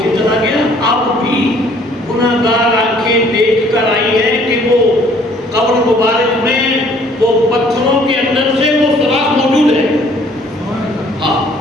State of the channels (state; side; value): normal; both; correlation 0.58